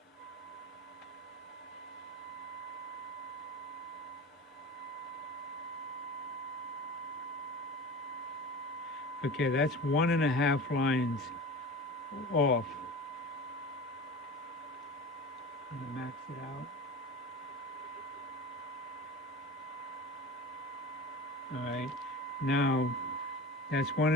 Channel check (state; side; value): normal; both; correlation 0.34